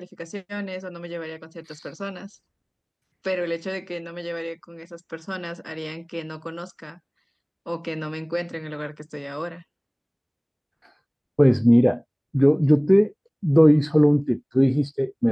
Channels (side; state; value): both; identical; correlation 1.00